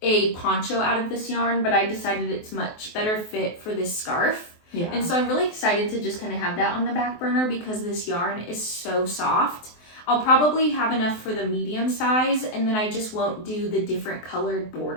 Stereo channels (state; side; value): late; right; 23 ms